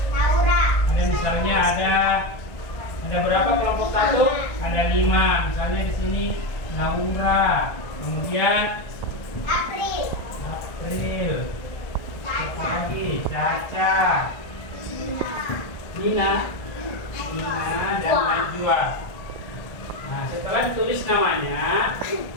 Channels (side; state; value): right; late; 1.3 ms